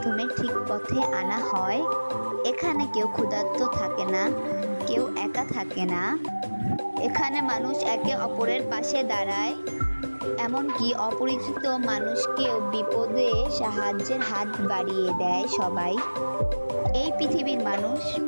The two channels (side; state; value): both; inverted; correlation -1.00